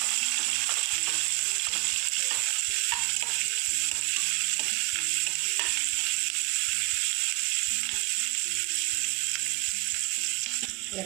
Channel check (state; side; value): quieter; left; 25.4 dB